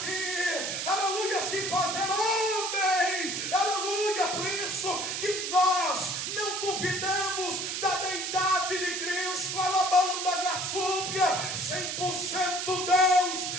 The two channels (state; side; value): noise; right; hiss, 3 dB below the sound